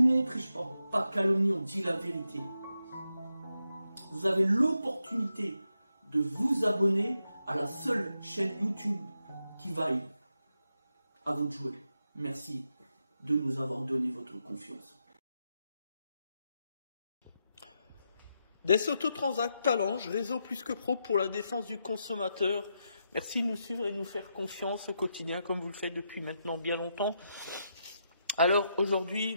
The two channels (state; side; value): inverted; both; correlation -0.84